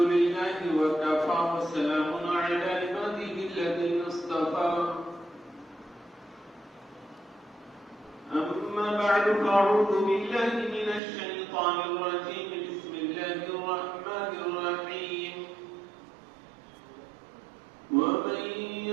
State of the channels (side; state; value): left; drops out; at 11.0 s